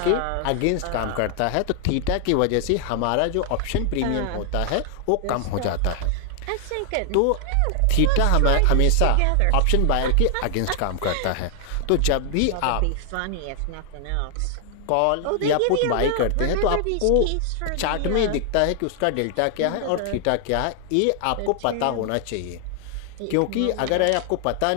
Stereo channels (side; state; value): both; different; correlation 0.00